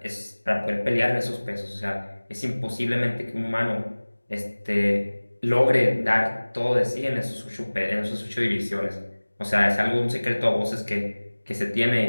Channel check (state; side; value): inverted; both; correlation -1.00